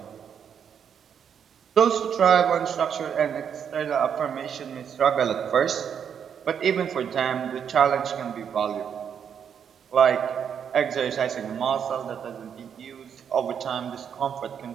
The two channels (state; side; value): quieter; left; 7.9 dB